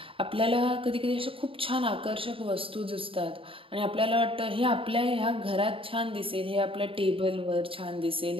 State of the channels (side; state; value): left; late; 0.26 ms